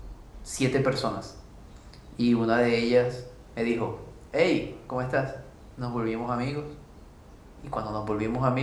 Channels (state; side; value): identical; both; correlation 1.00